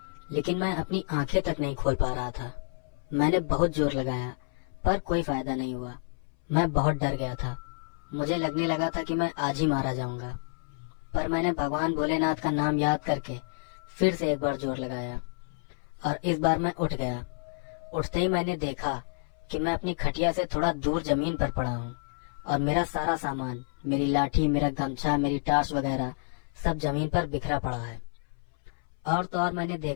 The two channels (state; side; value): silent; right; 58 dB below the other